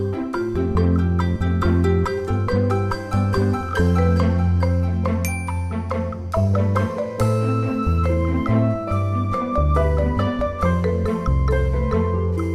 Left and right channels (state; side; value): identical; both; correlation 1.00